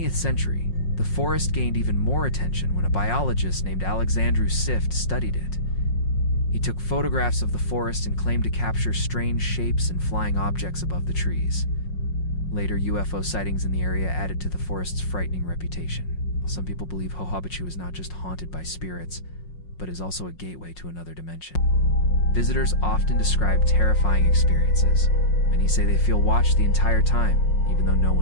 century, the forest gained even more attention when a biologist named Alexandru Sift studied it. He took photographs of the forest and claimed to capture strange shapes and flying objects above the trees. Later, UFO sightings in the area added to the forest's frightening reputation. Some people believe Hajubachu is not just haunted by spirits, but is also a gateway to another dimension. Visitors often describe terrifying experiences. Many say they feel watched the entire time, even though no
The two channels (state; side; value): late; right; 5.5 ms